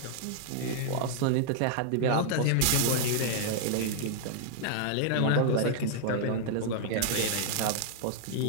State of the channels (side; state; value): both; different; correlation -0.01